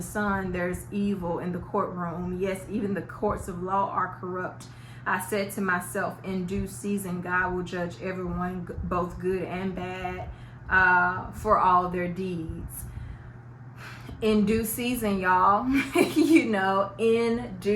sun there's evil in the courtroom. Yes, even the courts of law are corrupt. I said to myself, in due season God will judge everyone, both good and bad, for all their deeds. In due season, y'all. You know, in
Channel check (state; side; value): identical; both; correlation 1.00